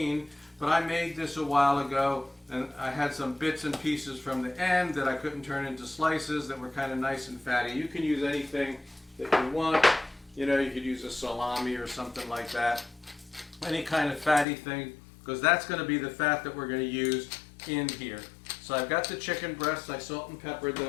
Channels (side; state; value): right; drops out; at 14.5 s